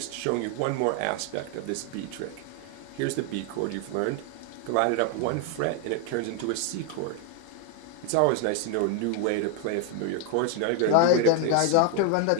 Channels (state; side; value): different; both; correlation 0.01